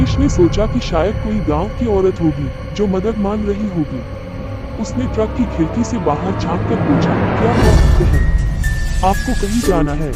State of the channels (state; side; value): identical; both; correlation 1.00